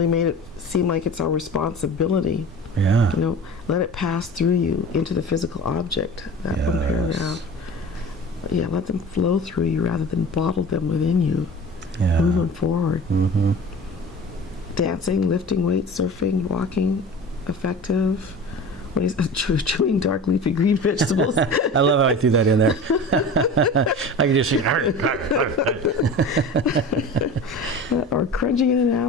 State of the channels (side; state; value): both; normal; correlation 0.36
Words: made it seem like it's our responsibility. Yeah. You know, let it pass through you into the physical object. That one paragraph. Yeah, let them flow through you rather than bottle them within you. Yeah. Move them forward. Dancing, lifting weights, surfing, walking, effective. What is chewing dark leafy green vegetables? I love how I threw that in there. I can just see. Or crunching in an